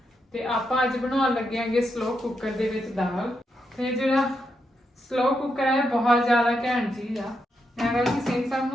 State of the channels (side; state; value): both; normal; correlation 0.83